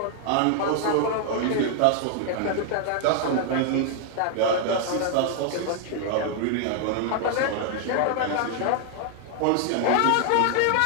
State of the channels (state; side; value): different; both; correlation 0.00